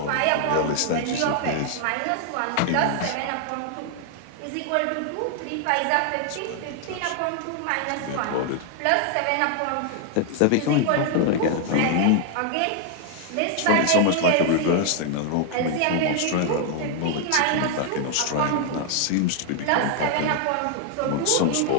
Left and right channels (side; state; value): both; different; correlation 0.00